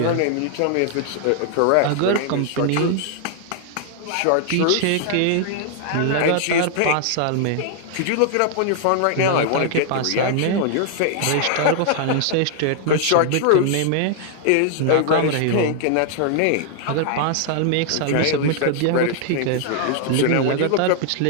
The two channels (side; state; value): both; different; correlation 0.00